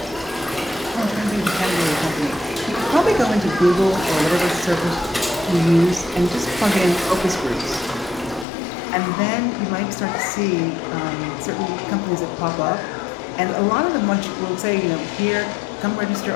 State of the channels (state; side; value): drops out; right; at 8.5 s